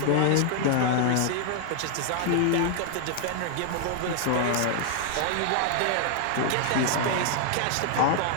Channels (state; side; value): different; both; correlation 0.00